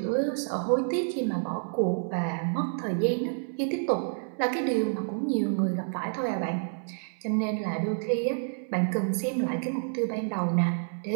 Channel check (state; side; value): silent; left; 59 dB below the other